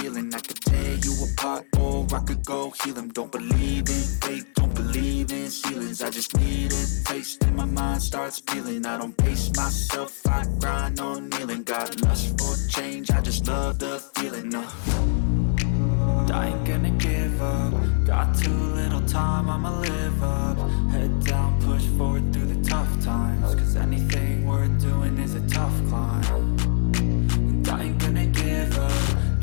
I could tear you apart or I could go heal them. Don't believe in fate, don't believe in ceilings. I just need a taste and my mind starts peeling. I don't pace myself, I grind on kneeling. Got lust for change, I just love the feeling. I ain't gonna give up. Got too little time, I'ma live up. Head down, push forward through the tough times. Cause anything worth doing is a tough climb. And I ain't gonna give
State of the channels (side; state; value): right; silent; 59 dB below the other